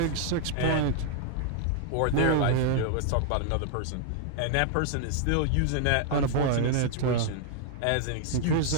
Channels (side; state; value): both; different; correlation 0.00